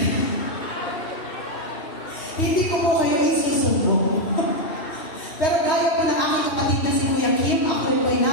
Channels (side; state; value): right; late; 3.2 ms